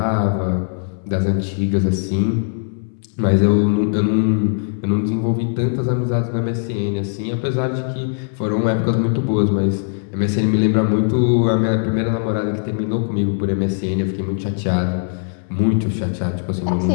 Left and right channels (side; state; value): right; silent; 66 dB below the other